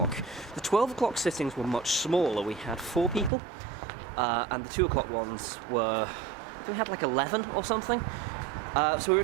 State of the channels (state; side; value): drops out; left; at 3.3 s